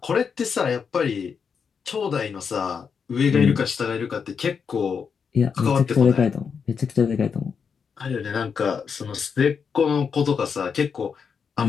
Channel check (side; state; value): right; quieter; 6.3 dB